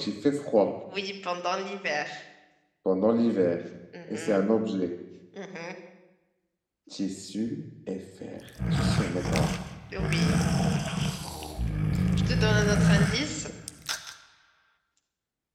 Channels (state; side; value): identical; both; correlation 1.00